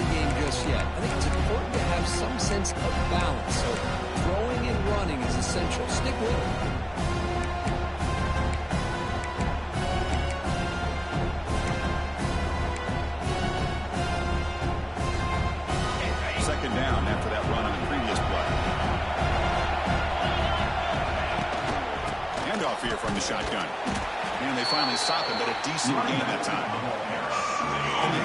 game just yet. I think it's important to have some sense of balance. So throwing and running is essential. Stick with it. Second down after that run on the previous play. Handoff here from the shotgun. And they finally stop him, but a decent gain that time. And they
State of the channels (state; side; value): identical; both; correlation 1.00